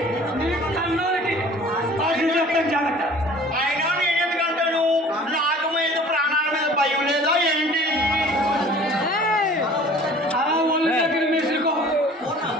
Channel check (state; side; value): normal; both; correlation 0.48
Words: నీ కన్నులకి చెప్తాను జాగ్రత్త. అయినా నేను ఎందుకంటాను, నాకు మీద ప్రాణాల మీద భయం లేదా ఏంటి? అలా ఒళ్ళు దగ్గర మెసులుకో.